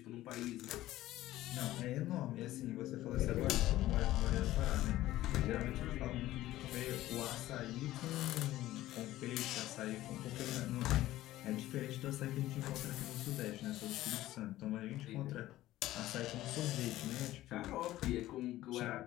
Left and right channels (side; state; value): right; quieter; 15.3 dB